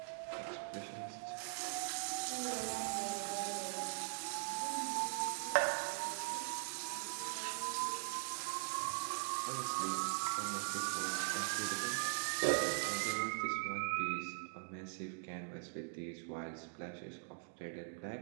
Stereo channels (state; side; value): silent; left; digital silence